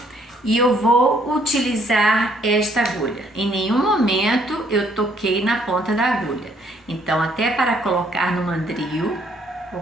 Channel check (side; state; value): both; normal; correlation 0.66